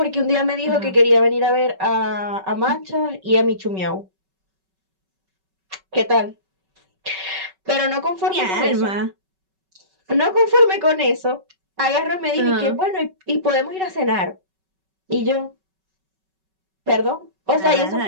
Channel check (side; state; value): left; late; 5.3 ms